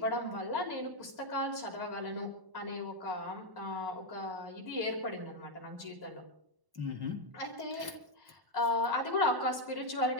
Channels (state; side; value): late; left; 1.0 ms